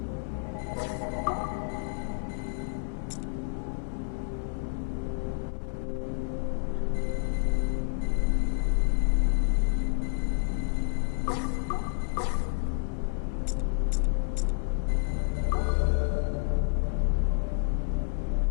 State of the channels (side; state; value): right; silent; 58 dB below the other